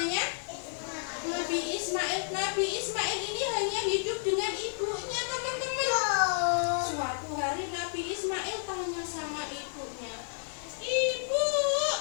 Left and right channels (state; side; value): silent; right; 57 dB below the other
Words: Nabi Ismail. Nabi Ismail ini hanya hidup dengan ibunya teman-teman. Suatu hari Nabi Ismail tanya sama ibunya, "Ibu,